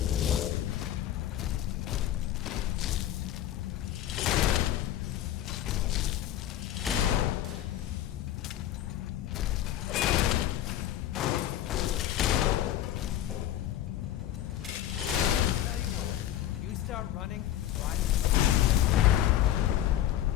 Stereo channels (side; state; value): right; quieter; 12.3 dB